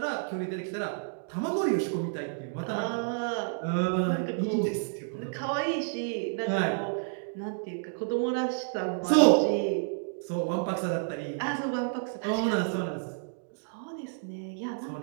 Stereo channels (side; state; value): left; silent; digital silence